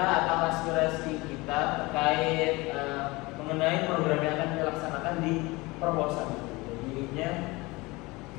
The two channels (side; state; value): right; quieter; 23.0 dB